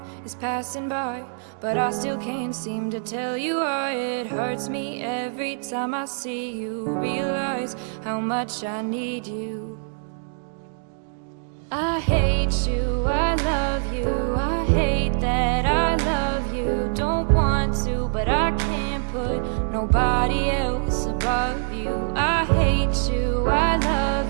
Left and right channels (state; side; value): silent; left; digital silence